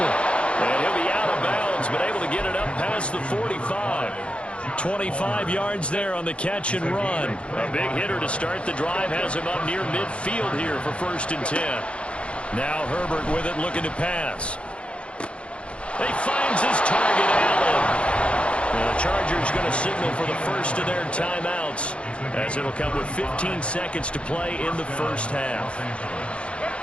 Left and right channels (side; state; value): right; late; 0.059 ms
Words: And he'll be out of bounds, but able to get it up past the 45. 25 yards there on the catch and run. A big hitter to start the drive. Has him up near midfield here for 1st and 10. Now Herbert with it, looking to pass. He finds his target, Allen. The Chargers going to signal for the first of their timeouts, as it'll come with 15 seconds to play in the first half.